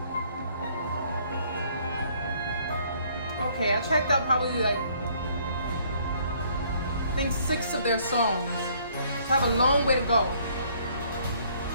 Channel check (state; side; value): inverted; both; correlation -0.63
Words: Okay, I checked out probably like, I think 6 of their songs. I have a long way to go.